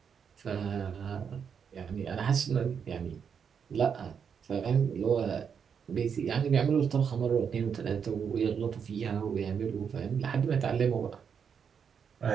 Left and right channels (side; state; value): left; quieter; 7.0 dB